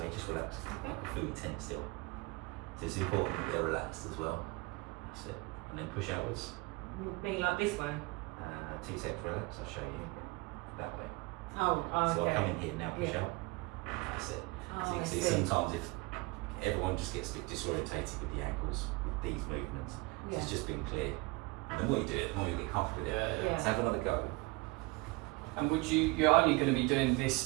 just relax. Okay. Like a fluid tense still. So it's important that they're relaxed as well. That's it. And then push outwards. Being like this way. 2 seconds, relax. I'll show you that way. Oh, okay. So I'll come in here now, push Yeah. out. That's it. Oh, So you I can see see. sometimes if everyone just gets a bit disorientated with the ankles with these movements. So Yeah. it's just being clear. And the more you do it, the more you get comfortable with it. Yeah. So have another go. And you're only going to be doing this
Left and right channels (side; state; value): left; quieter; 25.1 dB